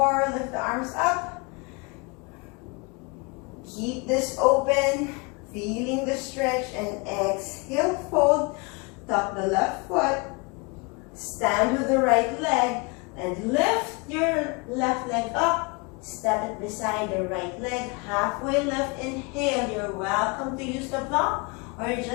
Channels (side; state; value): right; quieter; 30.0 dB